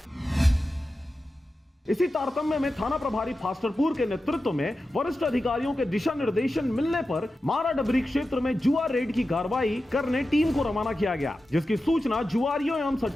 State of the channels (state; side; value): normal; both; correlation 0.92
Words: इसी तारतम्य में थाना प्रभारी फास्टरपुर के नेतृत्व में वरिष्ठ अधिकारियों के दिशा निर्देशन मिलने पर मारा डबरी क्षेत्र में जुआ रेड की कार्रवाई करने टीम को रवाना किया गया, जिसकी सूचना जुआरियों एवं